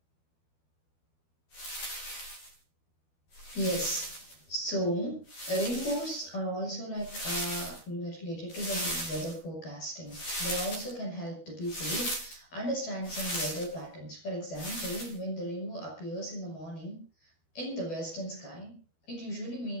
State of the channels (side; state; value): right; late; 12 ms